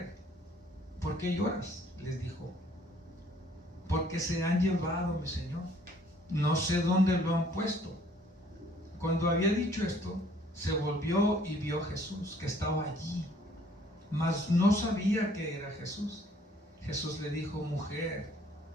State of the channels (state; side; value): normal; both; correlation 0.60